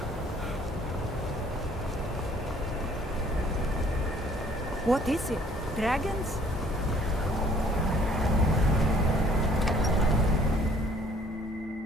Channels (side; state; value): both; normal; correlation 0.58